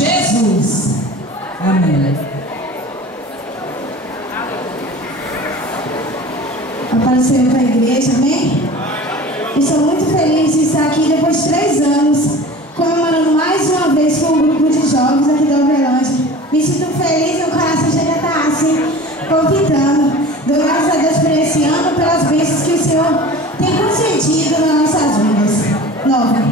Amém. Apareceu para a igreja, amém? Estou muito feliz de estar aqui depois de 3 anos, comemorando mais uma vez com um grupo de jovens aqui da Uberlândia. Me sinto feliz, meu coração chega a estar assim, palpitando. Dou graças a Deus por esse ano, pelas bênçãos que o Senhor tem concedido nas nossas vidas.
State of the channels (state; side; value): normal; both; correlation 0.39